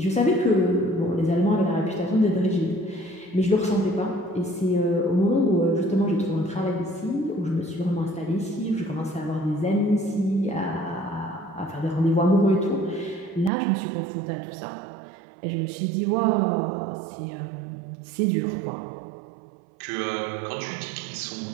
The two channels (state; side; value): drops out; left; at 13.5 s